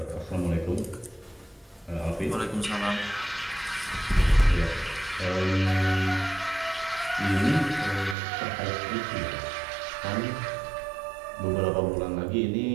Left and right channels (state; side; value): drops out; left; at 8.2 s